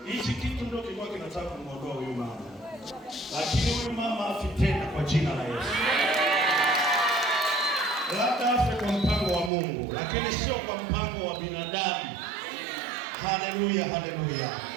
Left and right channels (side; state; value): left; drops out; at 9.5 s